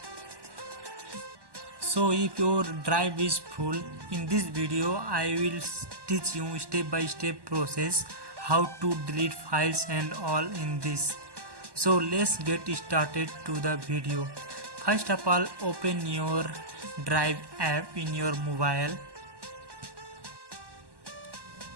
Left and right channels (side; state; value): left; late; 1.1 ms